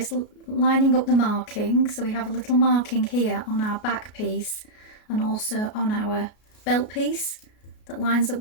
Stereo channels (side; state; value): right; late; 33 ms